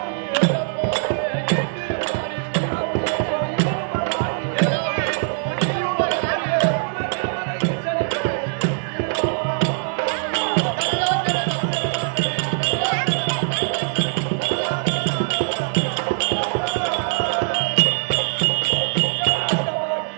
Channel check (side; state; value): left; silent; digital silence